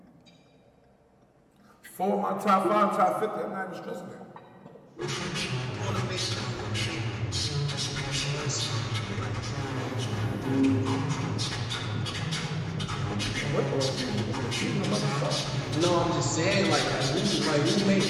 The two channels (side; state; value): both; identical; correlation 1.00